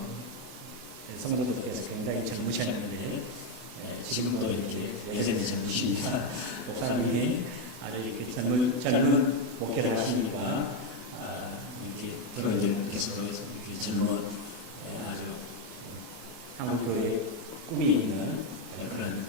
성도들께서 굉장히 젊으셨는데 지금도 이렇게 여전히 젊으십니다. 목사님이 아주 이렇게 젊은 목회를 하시니까 이렇게 교인들께서도 이렇게 젊은 아주 한국교회의 꿈이 있는 그런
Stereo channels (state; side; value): late; left; 24 ms